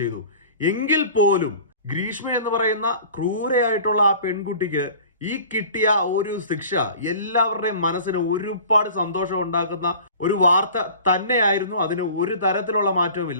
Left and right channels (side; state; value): both; inverted; correlation -0.43